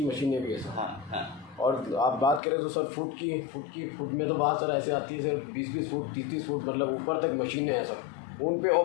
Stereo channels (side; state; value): right; drops out; at 2.4 s